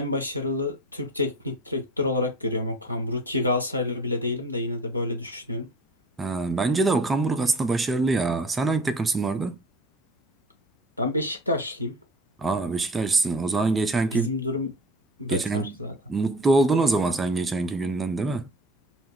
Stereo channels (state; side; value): normal; both; correlation 0.41